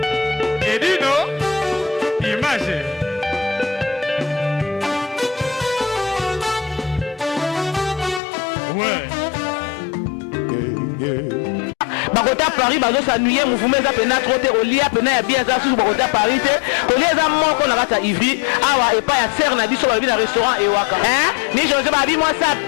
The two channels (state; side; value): drops out; right; at 8.2 s